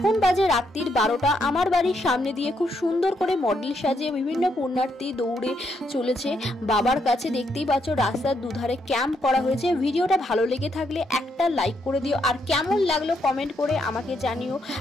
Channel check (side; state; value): both; normal; correlation 0.77